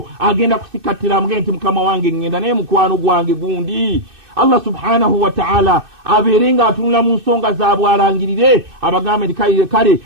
agenda kusikattira amugende nti mukama wange ngenda naye mukwano gwange gundi. Allah subhanahu wa ta'ala abeere ng'atunula mu nsonga zaabwe alangirire abagambe nti kale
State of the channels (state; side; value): late; left; 2.6 ms